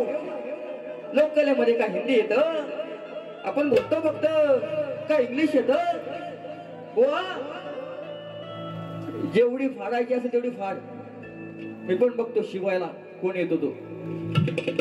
लोककलेमध्ये काय हिंदी येत आपण बोलतो फक्त काय इंग्लिश येत बुवा जेवढी फाडायची असेल तेवढी फाड मी पण बघतो शिवायला कोण येतो तो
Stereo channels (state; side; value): identical; both; correlation 1.00